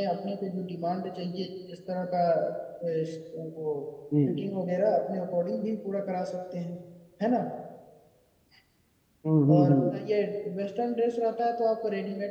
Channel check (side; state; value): both; identical; correlation 1.00